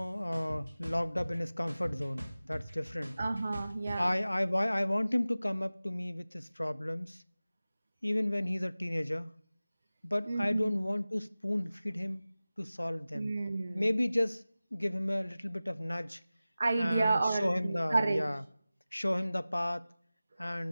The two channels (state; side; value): inverted; both; correlation -0.97